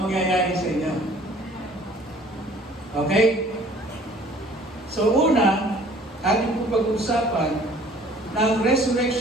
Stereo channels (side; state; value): both; normal; correlation 0.53